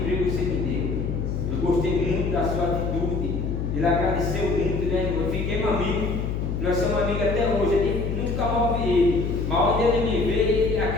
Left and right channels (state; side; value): noise; left; hum, 2 dB below the sound